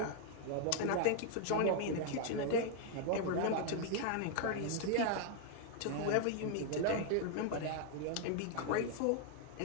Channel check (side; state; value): both; different; correlation 0.00